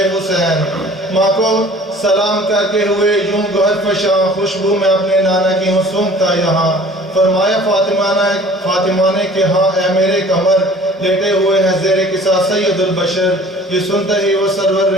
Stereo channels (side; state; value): both; normal; correlation 0.48